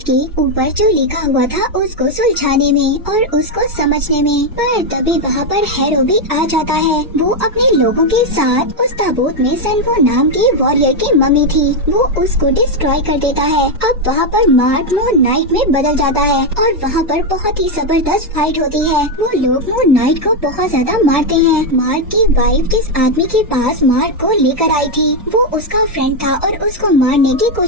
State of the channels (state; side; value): normal; both; correlation 0.04